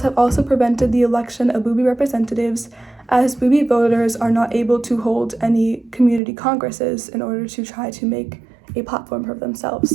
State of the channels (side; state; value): left; drops out; at 6.2 s